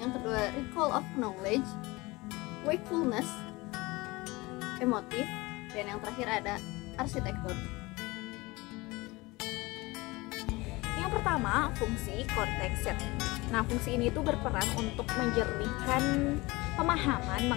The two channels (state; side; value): quieter; right; 22.5 dB